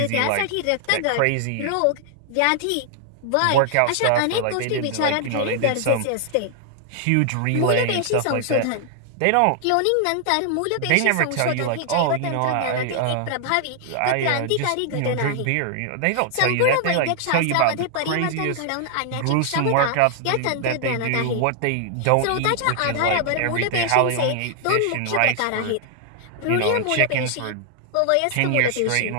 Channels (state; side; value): different; both; correlation 0.00